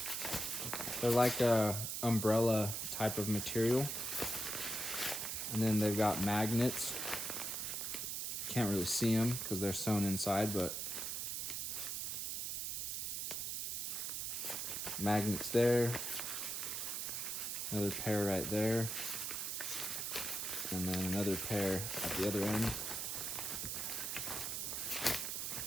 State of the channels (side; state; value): right; noise; hiss, 2 dB below the sound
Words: They're like a umbrella type of material. And then they've got magnets. Can't really see them because they're sewn inside, but magnets there. Another pair right there. And then another pair at the other end.